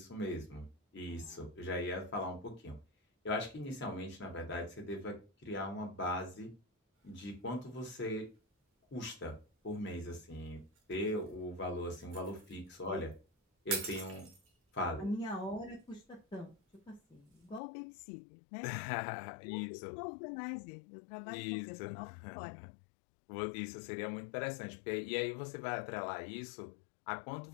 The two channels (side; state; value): right; drops out; at 17.6 s